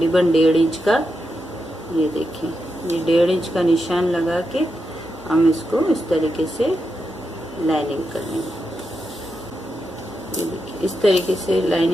1.5 इंच का। ये देखें, ये 1.5 इंच का निशान लगा के हम इसको इस तरीके से लाइनिंग कर लेंगे। ये देखिए, इस तरीके से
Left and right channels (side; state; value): both; normal; correlation 0.86